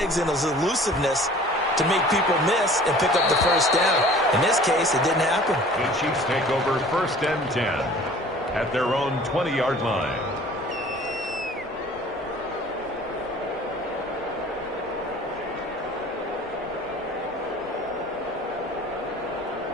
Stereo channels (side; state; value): both; normal; correlation 0.47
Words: and his elusiveness to make people miss and pick up the 1st down. In this case, it didn't happen. The Chiefs take over 1st and 10 at their own 20-yard line.